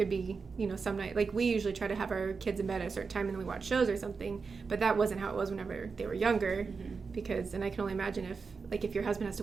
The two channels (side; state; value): left; quieter; 4.9 dB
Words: be, some night, like we usually try to have our kids in bed at a certain time and then we watch shows or something, but that wasn't how it was whenever they were younger because, and I can only imagine if your husband has to